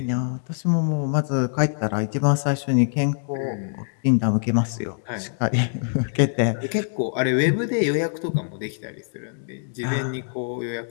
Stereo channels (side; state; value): right; silent; digital silence